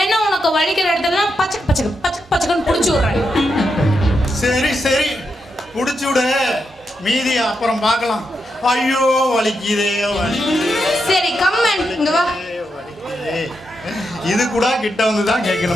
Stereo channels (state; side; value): normal; both; correlation 0.84